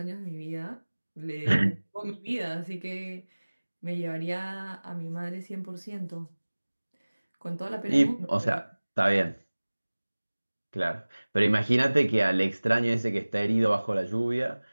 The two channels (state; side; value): inverted; both; correlation -1.00